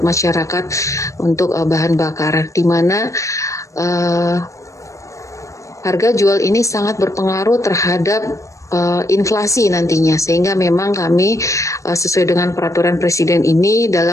masyarakat, untuk bahan bakar, di mana harga jual ini sangat berpengaruh terhadap inflasi nantinya, sehingga memang kami sesuai dengan peraturan Presiden ini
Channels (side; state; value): right; late; 0.15 ms